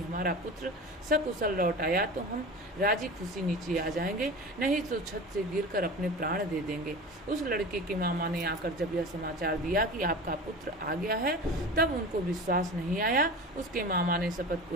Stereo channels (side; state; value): both; normal; correlation 0.33